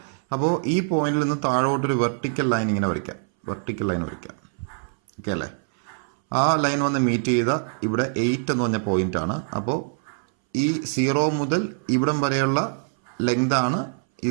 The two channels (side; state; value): left; silent; 61 dB below the other